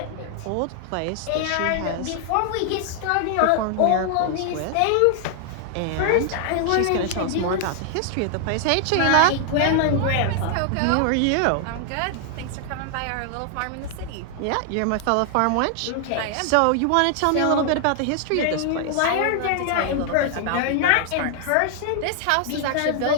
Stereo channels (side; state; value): both; different; correlation 0.00